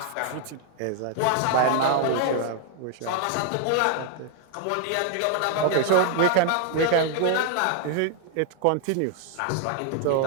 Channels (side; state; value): both; different; correlation 0.00